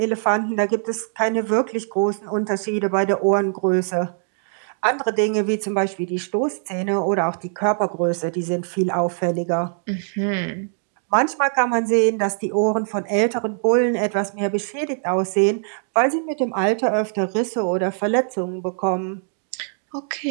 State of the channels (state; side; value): silent; left; digital silence